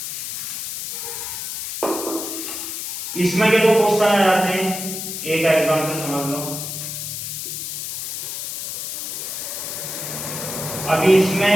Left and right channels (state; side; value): noise; left; hiss, 5 dB below the sound